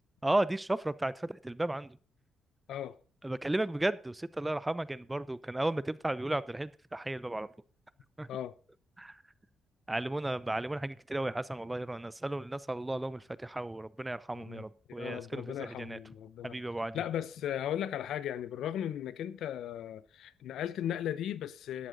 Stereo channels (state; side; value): normal; both; correlation 0.87